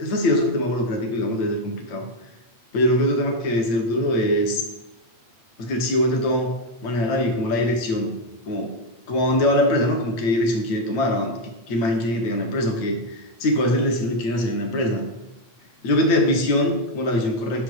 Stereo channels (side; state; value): right; late; 8.9 ms